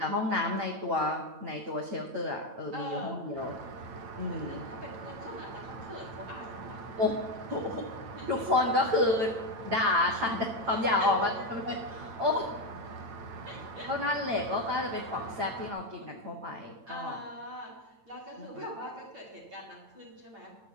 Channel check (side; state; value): left; late; 8.9 ms